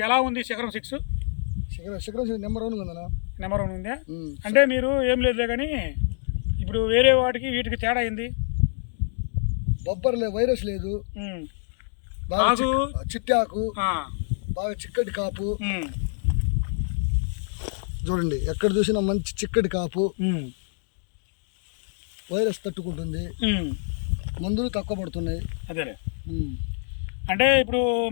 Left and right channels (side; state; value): right; silent; digital silence